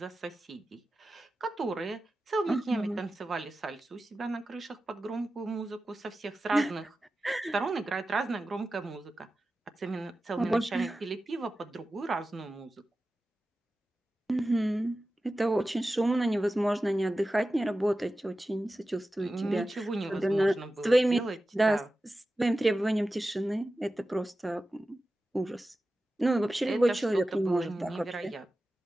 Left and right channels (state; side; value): normal; both; correlation 0.94